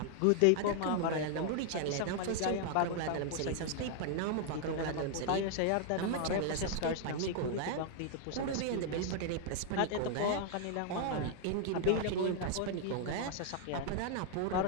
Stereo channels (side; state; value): both; different; correlation 0.00